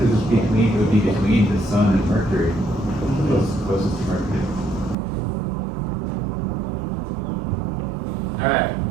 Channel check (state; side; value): drops out; left; at 5.0 s